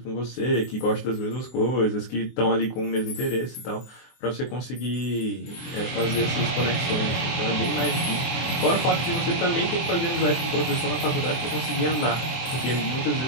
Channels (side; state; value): right; late; 24 ms